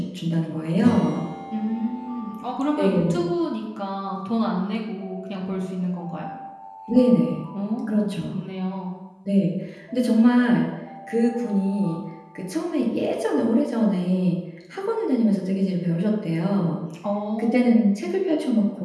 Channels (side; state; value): both; identical; correlation 1.00